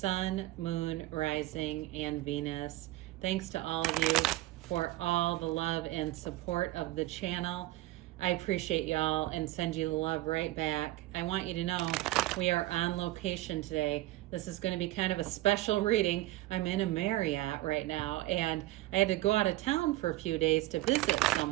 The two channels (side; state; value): left; quieter; 17.3 dB